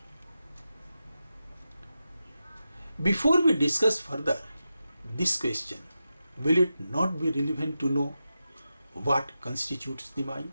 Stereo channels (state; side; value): inverted; both; correlation -0.90